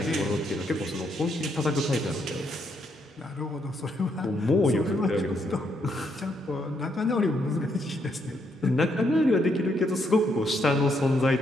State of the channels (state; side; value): normal; both; correlation 0.75